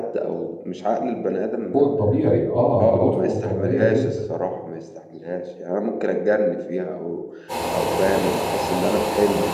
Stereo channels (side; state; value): both; identical; correlation 1.00